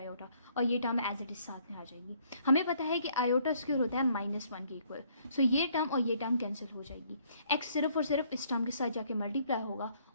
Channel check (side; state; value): both; inverted; correlation -0.65